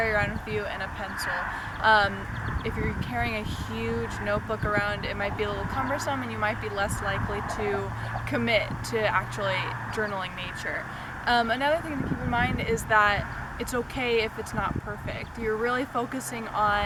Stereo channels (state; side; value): identical; both; correlation 1.00